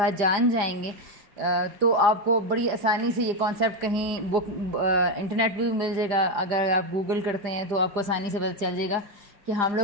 जान जाएंगे तो आपको बड़ी आसानी से ये कॉन्सेप्ट कहीं बुक इंटरनेट पे भी मिल जाएगा। अगर आप गूगल करते हैं तो आपको आसानी से पता चल जाएगा कि हम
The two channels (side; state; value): left; late; 4.9 ms